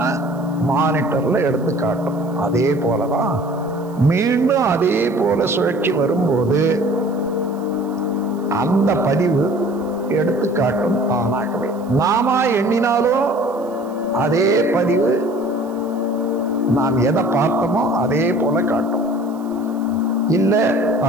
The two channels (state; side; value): noise; right; hiss, 28 dB below the sound